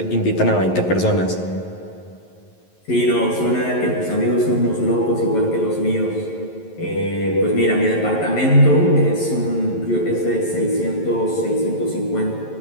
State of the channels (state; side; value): late; right; 11 ms